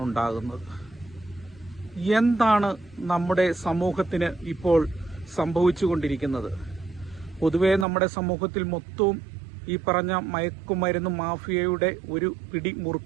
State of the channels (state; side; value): drops out; left; at 7.9 s